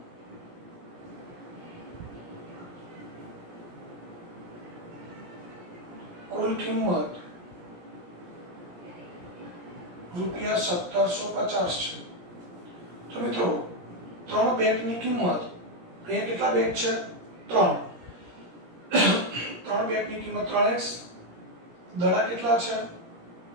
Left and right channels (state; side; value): late; left; 17 ms